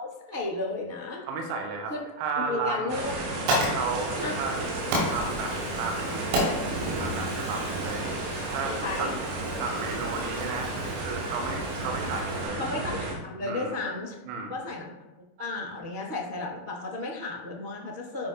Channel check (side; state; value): left; late; 24 ms